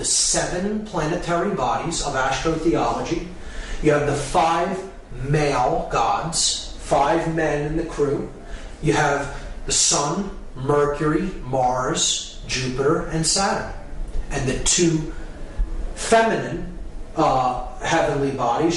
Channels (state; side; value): identical; both; correlation 1.00